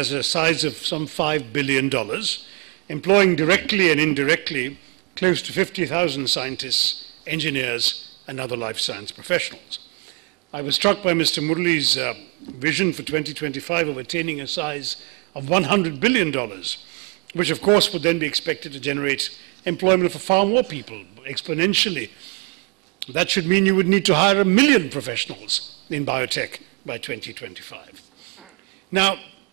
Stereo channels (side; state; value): left; quieter; 29.0 dB